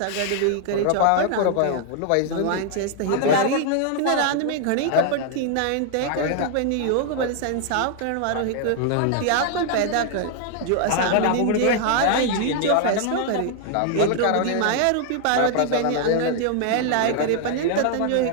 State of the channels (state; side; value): different; both; correlation 0.00